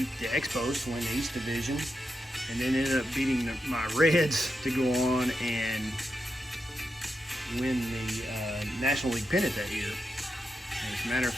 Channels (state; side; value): normal; both; correlation 0.86